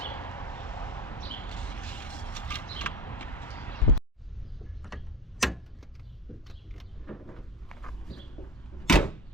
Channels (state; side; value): normal; both; correlation 0.31